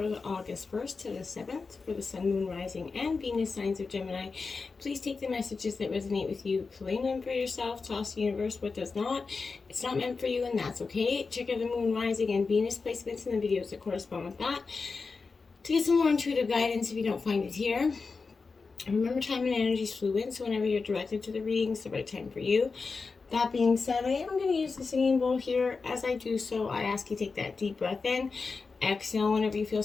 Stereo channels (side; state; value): right; quieter; 4.5 dB